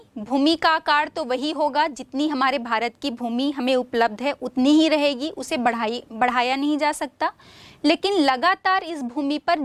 भूमि का आकार तो वही होगा, जितनी हमारे भारत की भूमि हमें उपलब्ध है उतनी ही रहेगी, उसे बढ़ाया नहीं जा सकता। लेकिन लगातार इस भूमि पर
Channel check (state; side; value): identical; both; correlation 1.00